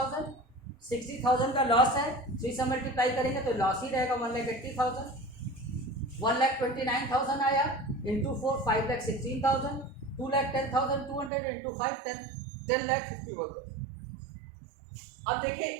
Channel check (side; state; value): left; drops out; at 11.3 s